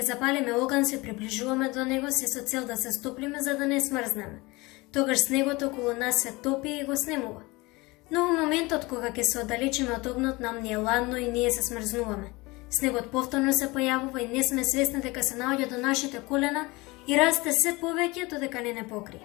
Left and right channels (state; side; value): quieter; right; 23.2 dB